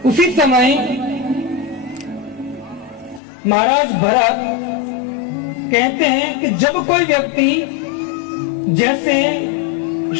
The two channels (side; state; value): right; drops out; at 3.2 s